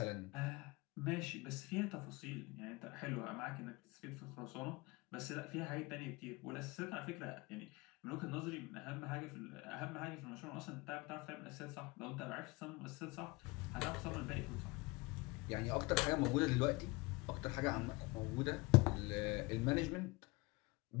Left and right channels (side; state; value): right; quieter; 24.3 dB